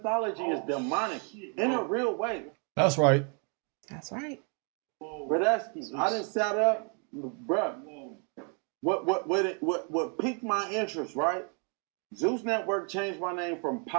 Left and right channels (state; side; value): quieter; left; 39.2 dB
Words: is demonic in a real way. That's right. That's right. Bradesky, I done sat up, bruh. What piqued my interest, right? Zeus Network changed my name from